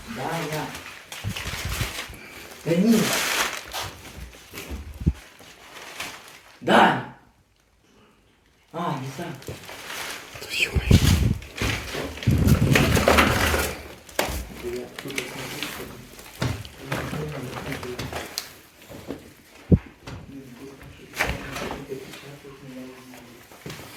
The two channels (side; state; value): both; identical; correlation 1.00